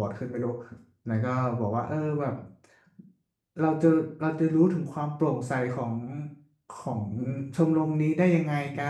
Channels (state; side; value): identical; both; correlation 1.00